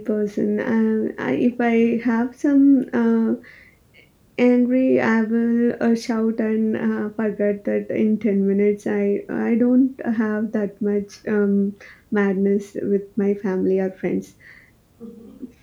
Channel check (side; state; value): both; identical; correlation 1.00